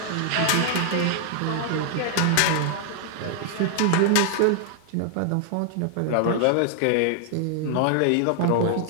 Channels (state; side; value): different; both; correlation 0.00